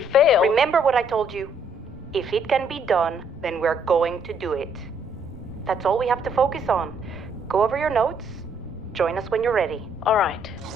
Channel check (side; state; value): both; normal; correlation 0.68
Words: fail... Remember what I told you. If it can be done, then we're going to do it. That's all we have to focus on. Go over your notes. Join us when you're ready. All right.